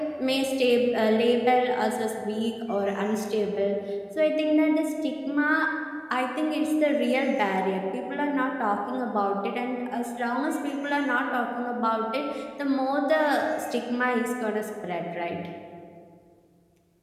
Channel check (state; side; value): identical; both; correlation 1.00